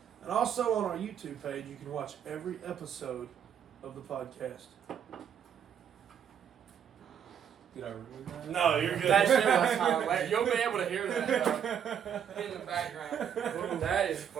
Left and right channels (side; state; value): left; quieter; 8.6 dB